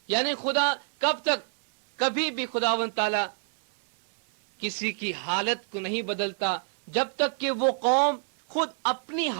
یعنی خدا کب تک، کبھی بھی خداوند تعالیٰ کسی کی حالت کو نہیں بدلتا جب تک کہ وہ قوم خود اپنی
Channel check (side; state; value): left; silent; 59 dB below the other